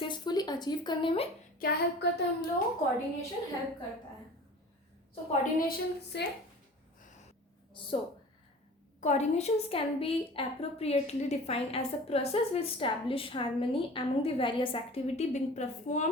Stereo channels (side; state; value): both; normal; correlation 0.42